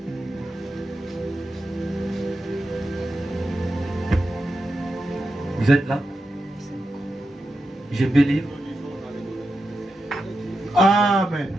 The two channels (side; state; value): both; normal; correlation 0.89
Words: Vous êtes là? Je peux lire. Amen.